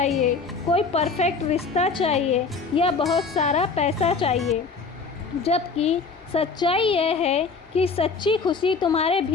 कोई परफेक्ट रिश्ता चाहिए या बहुत सारा पैसा चाहिए। जबकि सच्चाई यह है कि सच्ची खुशी तुम्हारे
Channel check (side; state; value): right; quieter; 4.7 dB